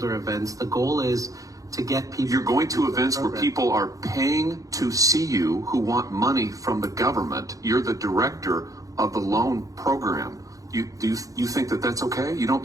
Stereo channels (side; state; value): left; late; 0.17 ms